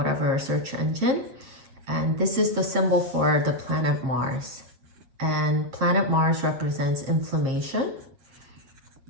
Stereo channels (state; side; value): late; left; 7.9 ms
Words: search engine. And this is the symbol for the planet Mars. And planet Mars represents inflammation.